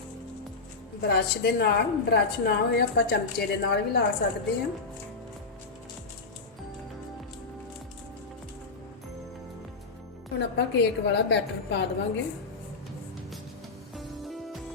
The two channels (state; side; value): quieter; right; 4.0 dB